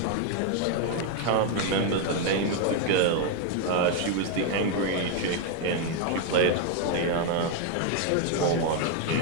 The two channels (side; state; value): both; different; correlation 0.00